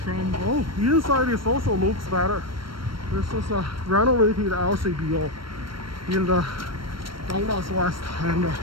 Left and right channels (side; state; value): left; late; 0.73 ms